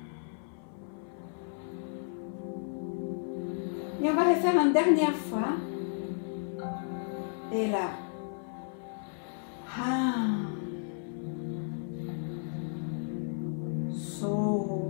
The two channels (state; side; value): silent; right; 56 dB below the other